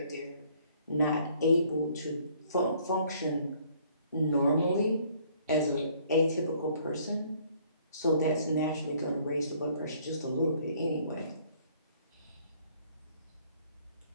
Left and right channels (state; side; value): inverted; both; correlation -0.61